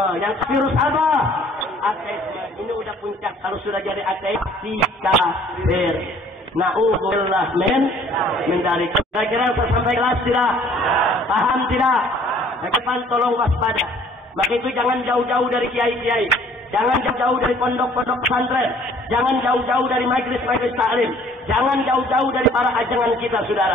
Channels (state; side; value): normal; both; correlation 0.56